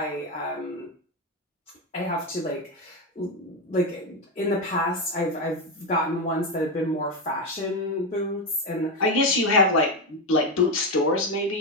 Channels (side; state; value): both; normal; correlation 0.10